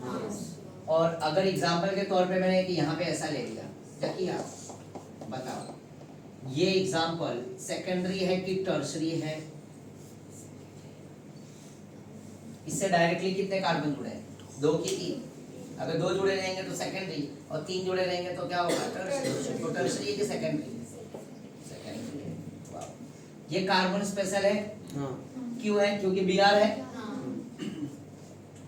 हाँ। और अगर एग्जांपल के तौर पे मैंने कि यहाँ पे ऐसा ले लिया क्या किया बताओ, ये एग्जांपल सेकेंडरी है कि टर्शरी है, इससे डायरेक्टली कितने कार्बन जुड़े हैं 2 की 3, अगर 2 जुड़े रहेंगे तो सेकेंडरी और 3 जुड़े रहेंगे तो क्या होगा टर्शरी। तो टर्शरी है कि सेकेंडरी सेकेंडरी है। वाह। ये कार्बन स्पेशल है हाँ क्यों है क्योंकि Br है,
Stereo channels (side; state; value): both; identical; correlation 1.00